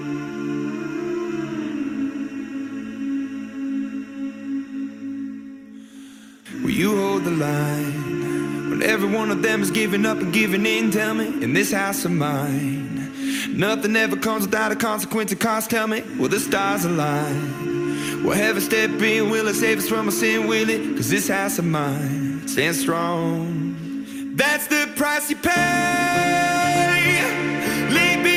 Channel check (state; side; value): identical; both; correlation 1.00